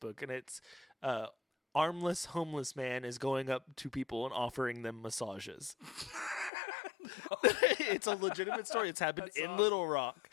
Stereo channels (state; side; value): drops out; right; at 6.5 s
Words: And it's armless homeless man is going up to people and offering them massages. It's a legitimate story. It's happened That's in awesome. Little Rock.